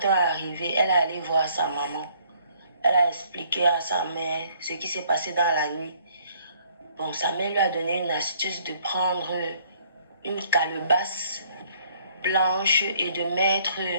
est arrivé, elle est allée voir sa maman. Elle a expliqué à sa mère ce qui s'est passé dans la nuit. Bon, sa mère lui a donné une astuce de prendre une calebasse blanche et de mettre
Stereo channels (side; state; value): both; inverted; correlation -0.63